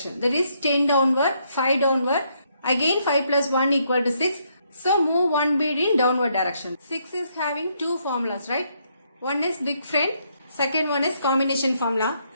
That is 10 downward, 5 downward. Again 5 plus 1 equal to 6. So move one bead in downward direction. 6 is having two formulas, right? One is big friend. Second one is combination formula.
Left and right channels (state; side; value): inverted; both; correlation -0.74